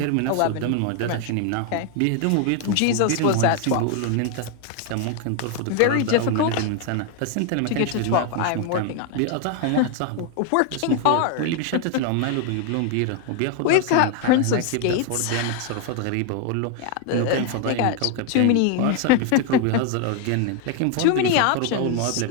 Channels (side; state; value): both; different; correlation 0.01